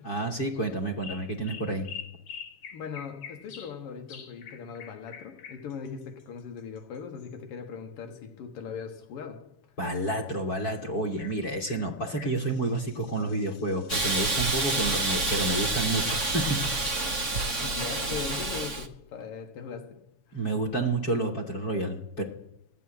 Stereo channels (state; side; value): late; right; 7.2 ms